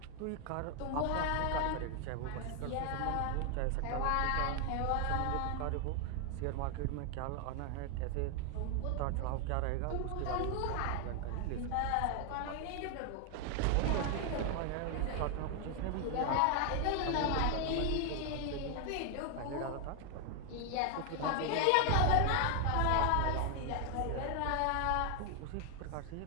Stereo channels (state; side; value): different; both; correlation 0.00